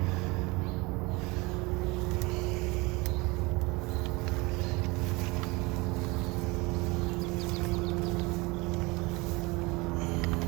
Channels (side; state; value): left; quieter; 24.8 dB